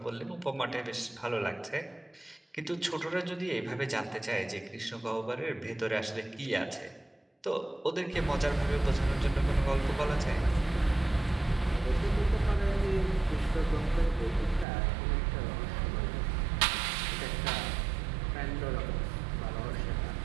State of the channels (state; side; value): drops out; left; at 14.7 s